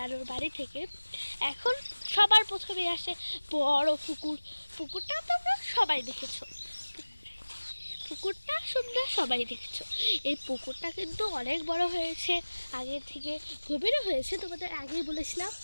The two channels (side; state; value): both; inverted; correlation -1.00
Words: বাড়ি থেকে। এখন সবার প্রথমে আসে বড় পুকুর। পুকুরটা তোমরা সবাই দেখেছো, পুকুরটা সুন্দর সবাই দেখছো। এই পুকুরটা কিন্তু অনেক বড় হয়েছে, আগের থেকে গভীরও হয়েছে, তোমাদের আগেই বলেছিলাম।